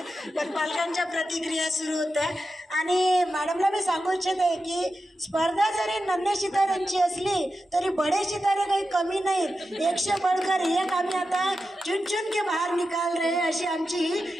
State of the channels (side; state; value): both; normal; correlation 0.90